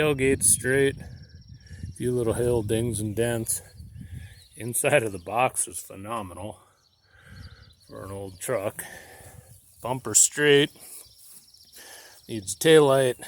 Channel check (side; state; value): both; identical; correlation 1.00